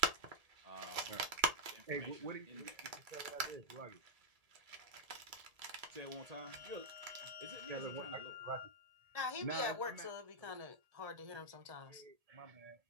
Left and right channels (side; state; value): left; late; 1.8 ms